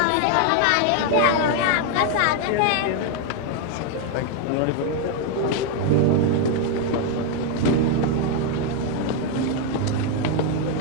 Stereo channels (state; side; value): different; both; correlation 0.01